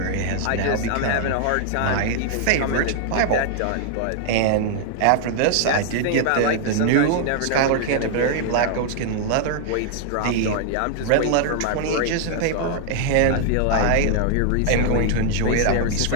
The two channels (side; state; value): both; different; correlation -0.01